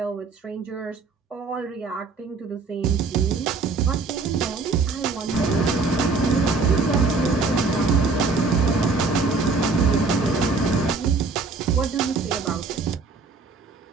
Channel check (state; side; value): quieter; left; 4.4 dB